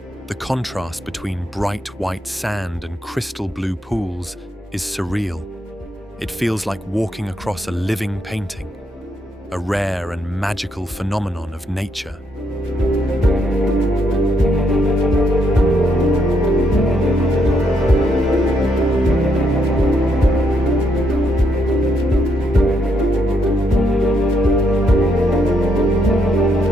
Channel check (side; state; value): both; normal; correlation 0.76